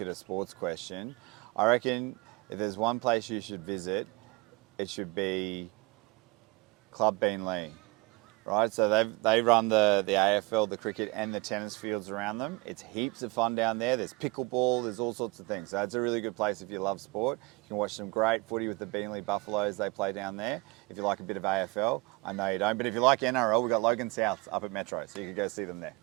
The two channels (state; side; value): quieter; left; 25.2 dB